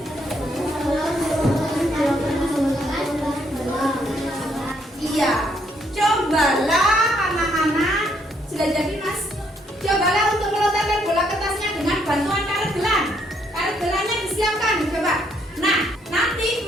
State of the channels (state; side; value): normal; both; correlation 0.71